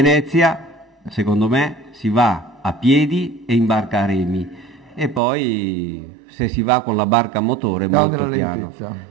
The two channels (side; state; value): left; drops out; at 5.2 s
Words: secondo me, si va a piedi e in barca a remi, e poi se si va con la barca a motore molto piano.